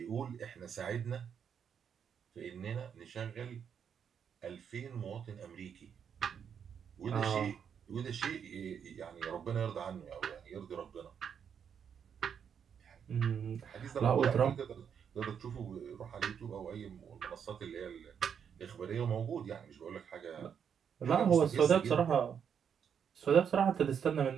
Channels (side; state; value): left; quieter; 7.7 dB